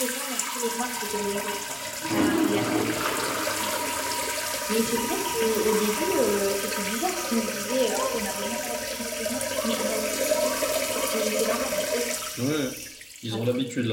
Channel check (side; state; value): both; identical; correlation 1.00